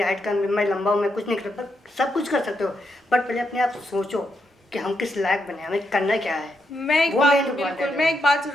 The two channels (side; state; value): both; normal; correlation 0.82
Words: हाइट कम है, मैं लंबा हूँ, मैं कुछ नहीं कर सकता। सब कुछ कर सकते हो, बट पहले अपने आप सोचो कि हम किस लायक बने, हमें करना क्या है। वो main important है। मैं एक बात